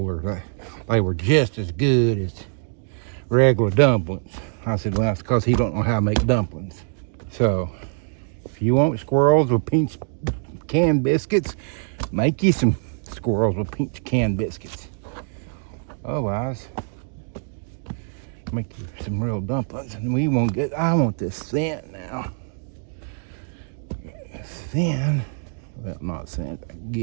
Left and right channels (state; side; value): silent; left; 63 dB below the other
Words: her that they were just as good as regular dumplings. I said, well, that's because he don't know how to make dumplings. So, if you want squirrels with pinched canned biscuits, make you some squirrels with pinched canned biscuits. Otherwise, make you some real dumplings. And we won't get, I want this thin now. Thin, well, not thin, I can